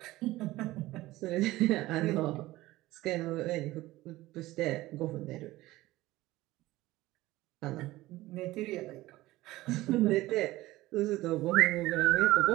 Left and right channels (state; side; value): quieter; left; 17.7 dB